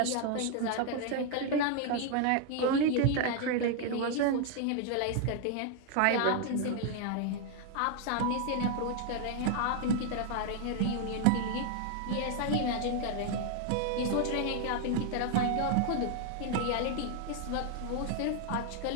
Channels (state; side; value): different; both; correlation 0.00